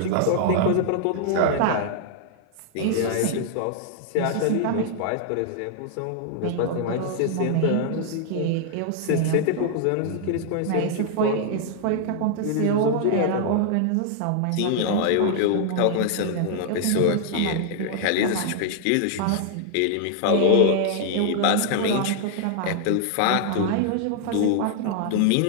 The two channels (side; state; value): both; different; correlation -0.01